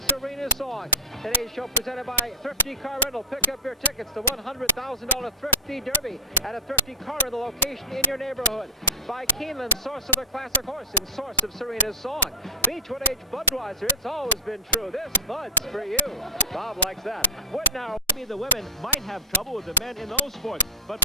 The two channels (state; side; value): normal; both; correlation -0.13